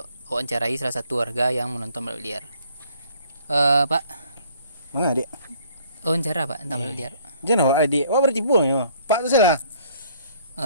awak mencarai salah satu warga yang menonton balap liar. Pak. Mana adik? Wawancara Pak tentang balap liar. Jangan awak adik. Awak bertipu ya. Pak tu salah.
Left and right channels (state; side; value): inverted; both; correlation -0.59